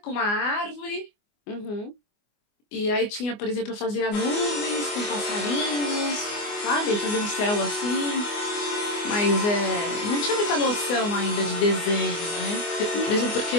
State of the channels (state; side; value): late; right; 24 ms